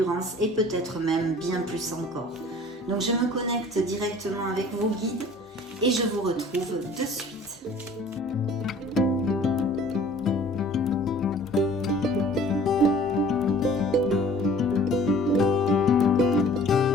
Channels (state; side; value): normal; both; correlation 0.49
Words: et peut-être même bien plus encore. Donc je me connecte directement avec vos guides et je vous retrouve de suite.